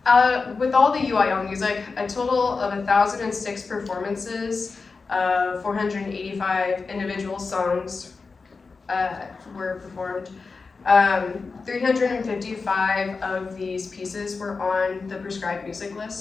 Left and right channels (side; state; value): right; quieter; 4.4 dB